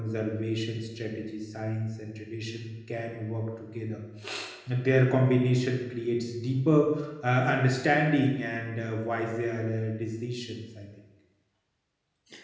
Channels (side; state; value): both; identical; correlation 1.00